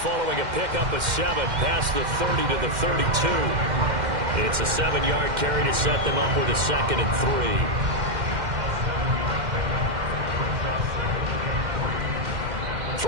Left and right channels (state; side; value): late; left; 2.1 ms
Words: a pickup of 7 past the 30 to the 32. It's a 7-yard carry to set them up with a 2nd and